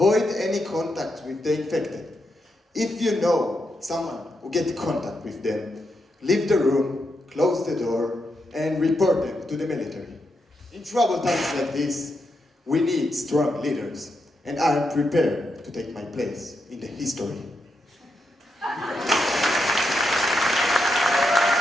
any contact with the infected. If you know someone who get contact with them, leave the room, close the door, and report them to the military. In troubled times like this, we need strong leaders, and I am prepared to take my place in the history.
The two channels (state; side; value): normal; both; correlation 0.83